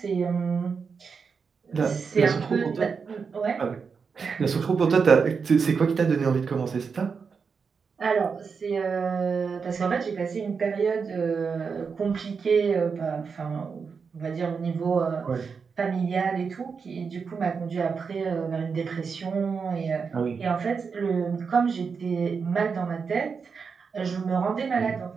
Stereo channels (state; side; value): quieter; left; 5.6 dB